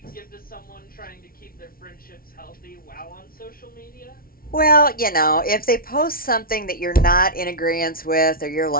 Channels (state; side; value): late; right; 0.43 ms